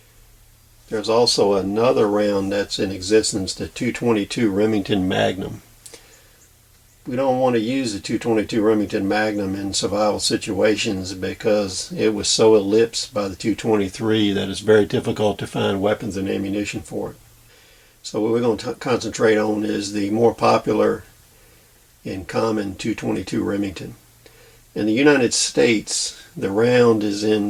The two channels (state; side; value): identical; both; correlation 1.00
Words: There's also another round that's in existence, the 222 Remington Magnum. We don't want to use the 222 Remington Magnum in survival situations because it was so eclipsed by the 223 that it's very difficult to find weapons and ammunition for it. So what we're going to concentrate on is the more popular and common 222 Remington. In the United States, the round is